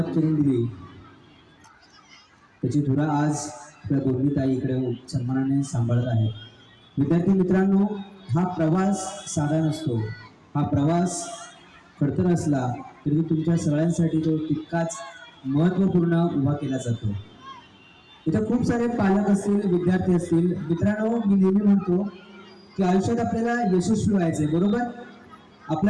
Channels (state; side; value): identical; both; correlation 1.00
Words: करून दिली त्याची धुरा आज त्या दोन्ही ताई इकडे सन्मानाने सांभाळत आहेत. विद्यार्थी मित्रांनो, हा प्रवास साधा नसतो. हा प्रवास खडतर असला तरी तुमच्या सगळ्यांसाठी तो तितकाच महत्त्वपूर्ण उभा केला जातो. इथे खूप सारे पालक असतील, विद्यार्थी असतील. मित्रांनो, मी नेहमी म्हणतो की आयुष्यात आपल्याला यशस्वी व्हायचंय, बरोबर?